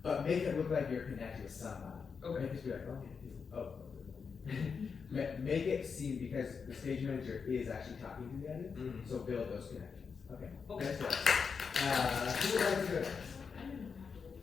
But make it look like you're connected with somebody. Okay. Make it be like, make it seem, because the stage manager is actually talking to the audience, so build those connections. Okay. Okay. Next one. Who would like to go next?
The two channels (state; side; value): quieter; right; 5.7 dB